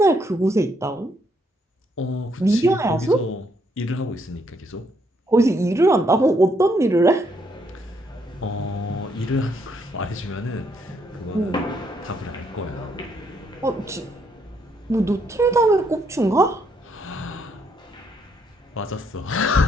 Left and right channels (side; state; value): both; normal; correlation 0.73